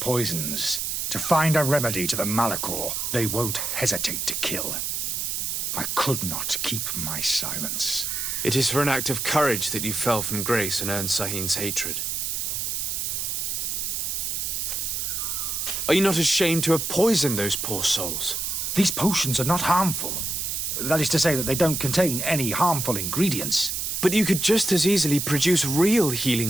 To find a remedy to the Malachor, they won't hesitate to kill. I could not keep my silence. It is for an act of courage that you fell from grace and earned Sahin's hatred. Are you not ashamed to have poisoned those poor souls? These potions are not harmful. That is to say that they don't contain any harmful ingredients. But you could just as easily produce real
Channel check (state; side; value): noise; right; hiss, 2 dB below the sound